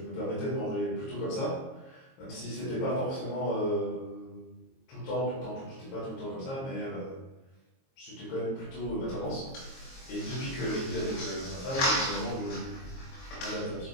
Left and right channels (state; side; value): late; right; 22 ms